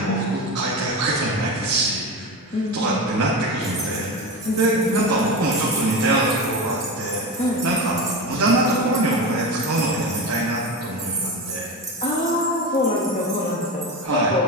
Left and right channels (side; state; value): both; normal; correlation 0.23